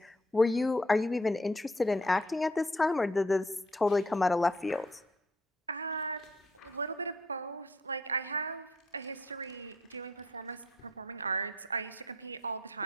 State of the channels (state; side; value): normal; both; correlation 0.67